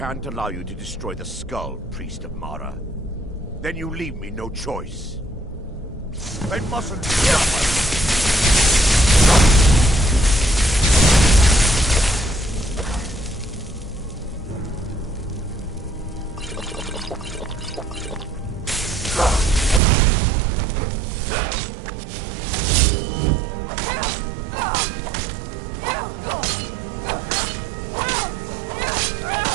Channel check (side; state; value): left; drops out; at 19.8 s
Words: allow you to destroy the skull, priest of Mara. Then you leave me no choice. They mustn't stop us!